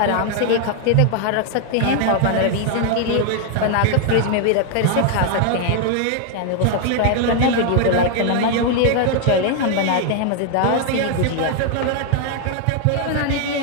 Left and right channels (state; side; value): different; both; correlation 0.00